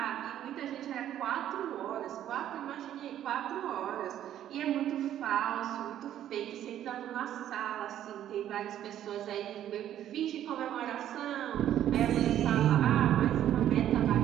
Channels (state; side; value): quieter; left; 11.4 dB